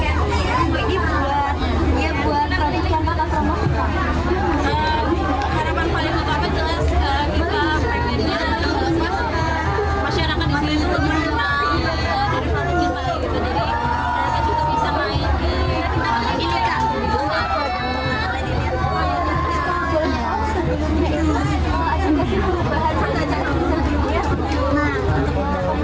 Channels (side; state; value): both; identical; correlation 1.00